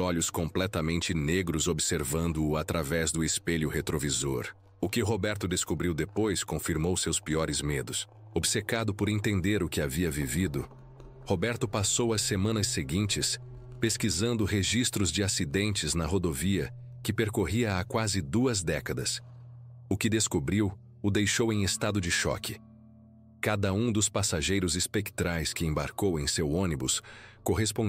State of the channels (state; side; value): identical; both; correlation 1.00